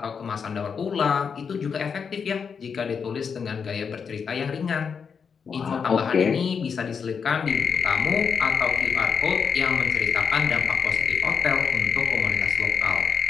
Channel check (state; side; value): quieter; right; 6.3 dB